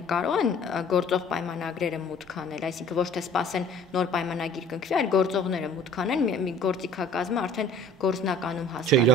կարող են գործող պայմանագրերը մուտք անել, այսինքն ոչ թե սպասեն նոր պայմանագիր կնքվի, այլ գործողները մուտք անեն, մի գործիքակազմը արդեն գործնականում հասկանան։ Չէ,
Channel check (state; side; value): normal; both; correlation 0.50